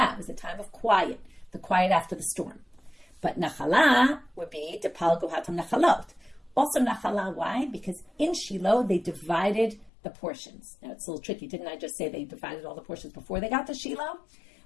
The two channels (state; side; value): drops out; right; at 9.9 s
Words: It was a time of quiet, the quiet after the storm. But nachala would be depal gohatam nachalot. Also nachala, why? Because in Shiloh, they divided the portions. Now, it's a little tricky. Didn't I just say they divided all the portions before they got to Shiloh?